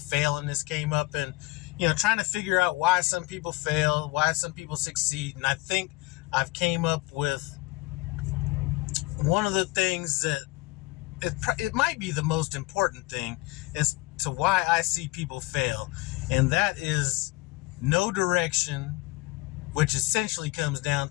this came up, and trying to figure out why some people fail, why some people succeed. And I think I've came up with one of the things that it might be the most important thing as to why I see people fail, and that is no direction, which essentially comes down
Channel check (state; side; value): quieter; right; 22.1 dB